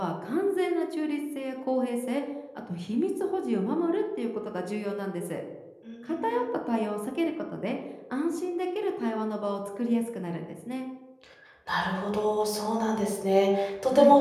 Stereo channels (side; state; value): both; identical; correlation 1.00